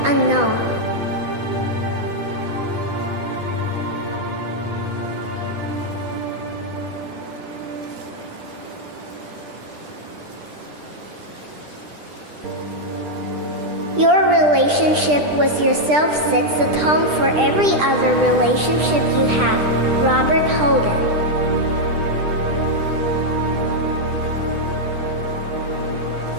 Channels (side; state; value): left; late; 10 ms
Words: Unknown. Your relationship with yourself sets the tone for every other relationship you have. Robert Holden.